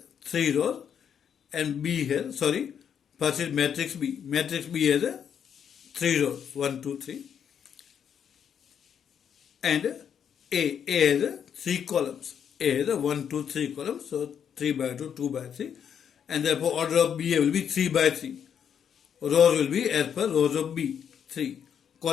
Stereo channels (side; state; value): right; quieter; 8.1 dB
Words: 3 rows and B has, first is matrix B. Matrix B has 3 rows, 1, 2, 3. And A has 3 columns. A has 1, 2, 3 columns. So 3 by 2, 2 by 3. And therefore order of BA will be 3 by 3. Rows will be as per rows of B, 3.